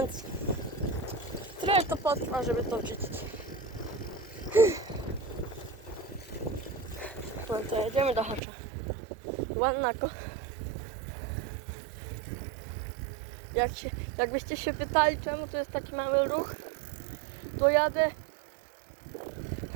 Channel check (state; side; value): drops out; left; at 8.4 s